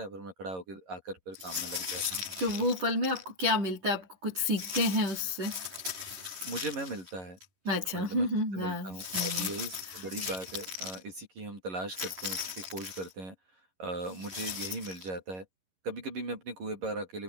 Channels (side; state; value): left; late; 11 ms